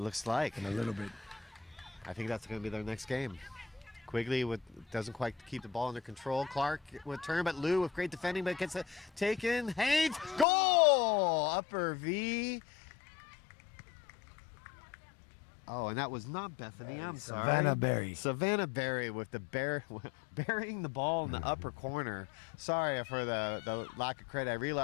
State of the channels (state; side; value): drops out; right; at 10.5 s